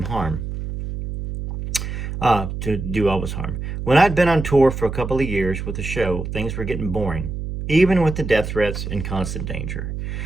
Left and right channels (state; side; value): noise; right; hum, 6 dB below the sound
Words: harm. To do Elvis harm. When I'd been on tour for a couple of years with the show, things were getting boring, even with the death threats and constant danger.